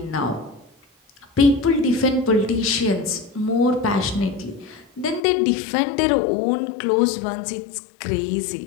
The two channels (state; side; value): drops out; right; at 5.2 s